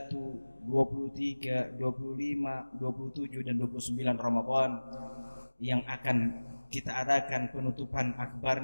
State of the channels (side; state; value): both; inverted; correlation -1.00